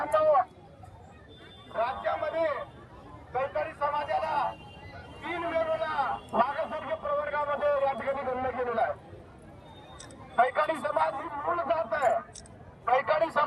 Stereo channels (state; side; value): identical; both; correlation 1.00